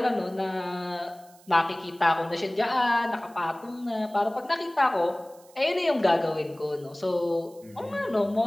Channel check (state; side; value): noise; right; hiss, 26 dB below the sound